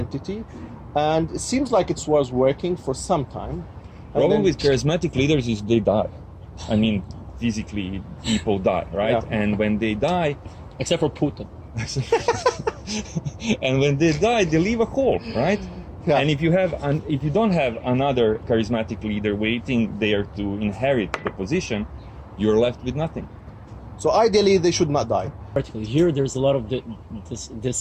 And it seems like it was working for some time. Problem with charismatic leaders is they die. I mean, physically, people die, right? Yeah. And when they die, Except for Putin. and when they die, they leave a hole, right? Yeah. And if you don't have another charismatic leader waiting there to inherit the position, you're left with nothing. So ideally, they should not die. Particularly here, there's a lot of this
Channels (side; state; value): both; identical; correlation 1.00